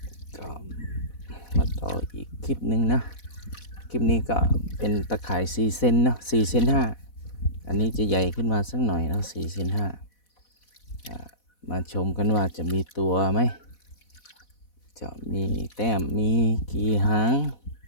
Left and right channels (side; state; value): right; late; 4.1 ms